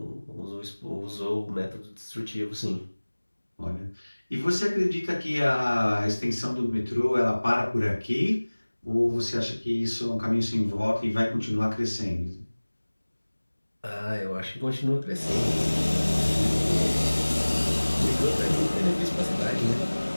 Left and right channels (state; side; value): inverted; both; correlation -1.00